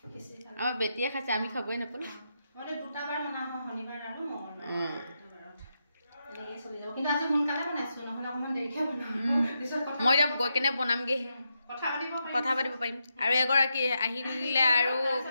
আমাৰ বেটিয়ে খাইছে আমি খাবই নাপালো মই দুটা বাৰ বনা হয় শনিবাৰ আৰু মঙ্গলবাৰ এনেকৈ চলি যাব কিন্তু আজি সোনকালে বনাইছো নহ'লে অকণমান দেৰিকৈ বনাম মই এতিয়া গৈ কেনে বনামগে কথা পাতিব পাৰিম আৰু এগৰাকী আহিলে আৰু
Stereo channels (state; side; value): inverted; both; correlation -0.84